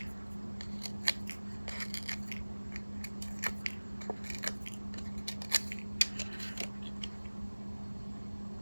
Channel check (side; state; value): both; inverted; correlation -1.00